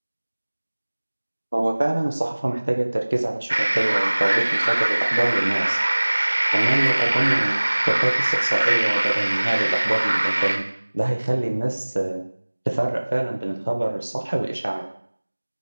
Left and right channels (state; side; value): inverted; both; correlation -1.00